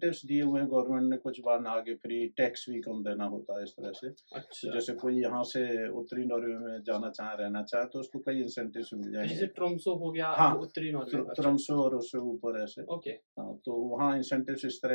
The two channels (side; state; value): both; inverted; correlation -1.00